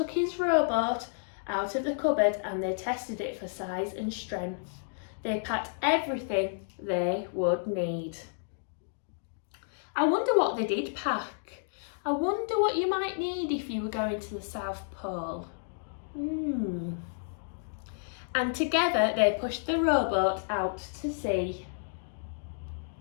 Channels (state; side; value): silent; right; digital silence